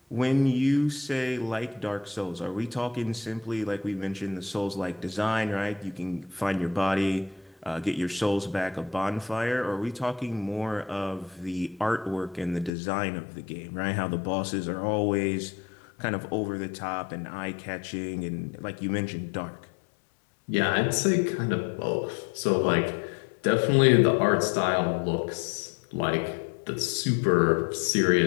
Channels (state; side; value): drops out; right; at 12.7 s